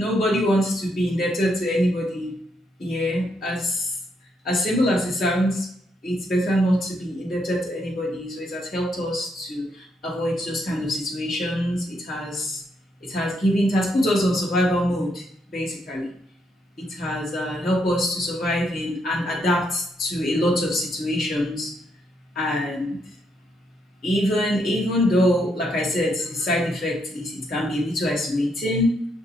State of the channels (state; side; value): normal; both; correlation 0.76